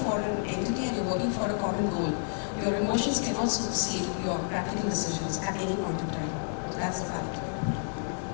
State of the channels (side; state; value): right; silent; 58 dB below the other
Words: an entity and you're working for a common goal. Your emotions cannot supersede your practical decisions at any point in time. That's a fact.